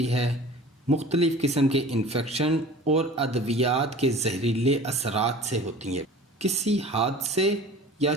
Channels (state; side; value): normal; both; correlation 0.42